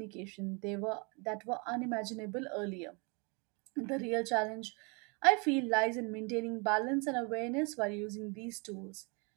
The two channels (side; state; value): left; quieter; 32.5 dB